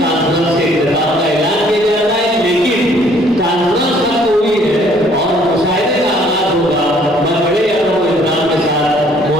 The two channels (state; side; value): normal; both; correlation 0.60